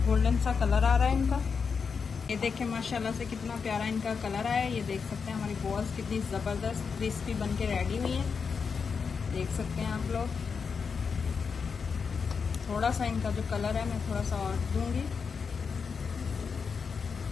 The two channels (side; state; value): right; quieter; 5.7 dB